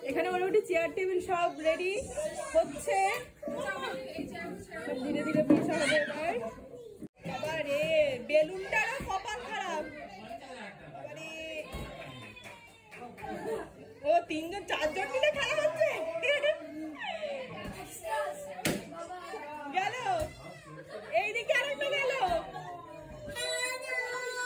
এখানে মোটামুটি চেয়ার টেবিল সব রেডি হচ্ছে, সব ধীরে ধীরে বসা হবে এবার। বাবা রে, বেলুনটারও কপাল খারাপ। ও তিনজন চারজন মিলে খেলা হচ্ছে। গেল এইদিকে আরেকটা গেল।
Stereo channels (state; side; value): identical; both; correlation 1.00